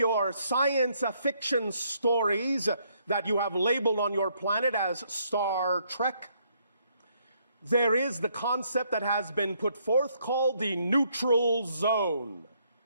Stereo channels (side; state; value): both; inverted; correlation -0.71